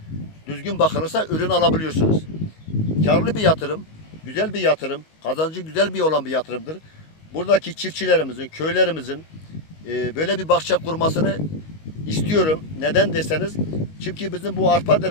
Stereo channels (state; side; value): late; right; 19 ms